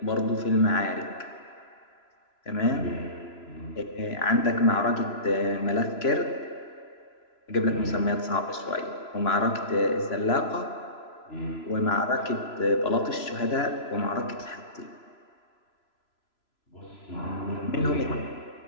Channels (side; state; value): right; late; 3.0 ms